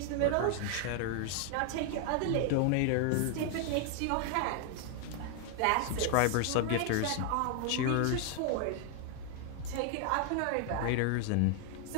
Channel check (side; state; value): both; different; correlation 0.00